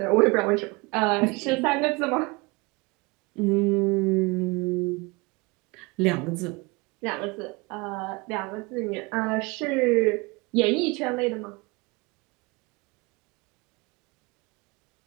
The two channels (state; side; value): quieter; left; 26.1 dB